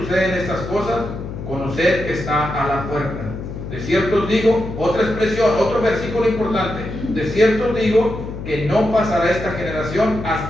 estas cosas, conoced que está a la puerta. De cierto os digo, otra expresión, otro versículo importante, de cierto os digo que no pasará esta generación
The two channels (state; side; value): noise; left; hum, 8 dB below the sound